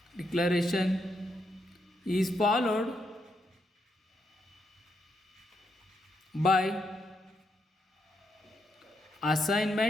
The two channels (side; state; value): both; normal; correlation 0.80